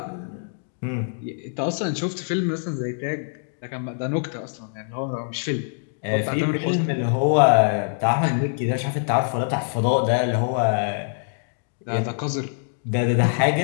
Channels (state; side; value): silent; right; digital silence